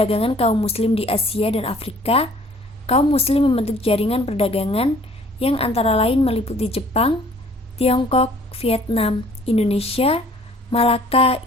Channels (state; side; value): normal; both; correlation 0.55